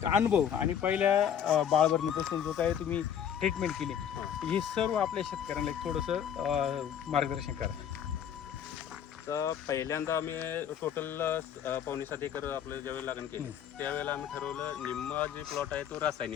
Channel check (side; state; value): right; quieter; 8.9 dB